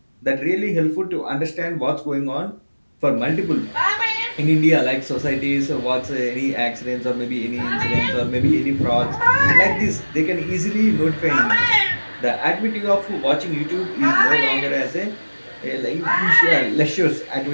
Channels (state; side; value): inverted; both; correlation -1.00